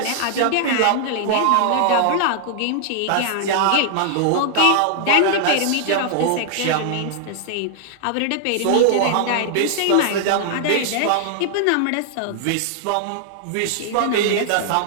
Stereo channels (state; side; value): different; both; correlation -0.01